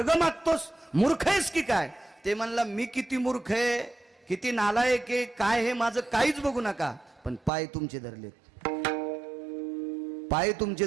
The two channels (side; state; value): left; drops out; at 7.5 s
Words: मागतोस. मूर्ख आहेस की काय? ते म्हणला मी किती मूर्ख आहे, किती नालायक आहे, काय हे माझं काहीच बघू नका, पण पाय तुमचे धरलेत, पाय तुमचे